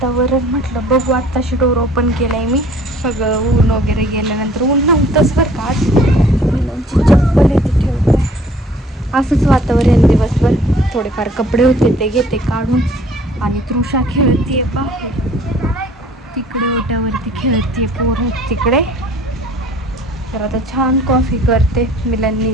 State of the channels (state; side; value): normal; both; correlation 0.54